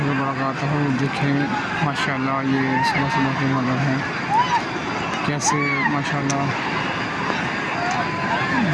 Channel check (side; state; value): both; identical; correlation 1.00